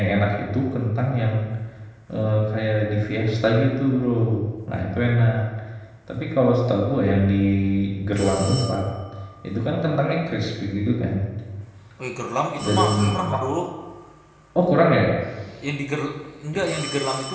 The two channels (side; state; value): both; identical; correlation 1.00